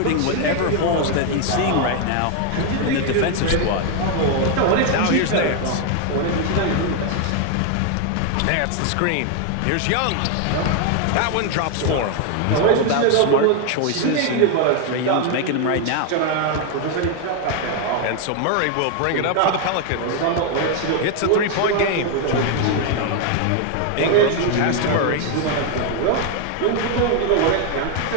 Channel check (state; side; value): different; both; correlation 0.01